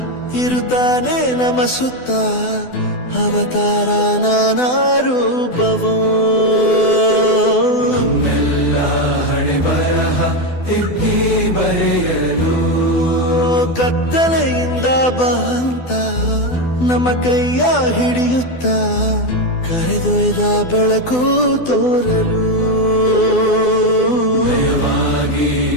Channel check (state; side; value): late; right; 12 ms